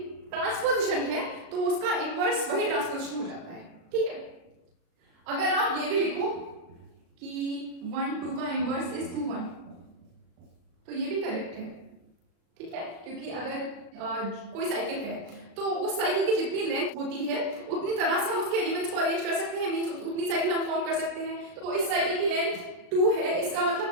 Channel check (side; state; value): left; late; 36 ms